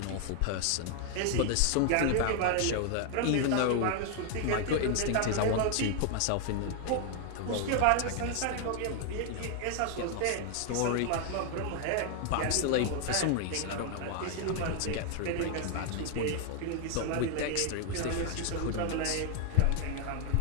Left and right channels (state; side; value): different; both; correlation 0.00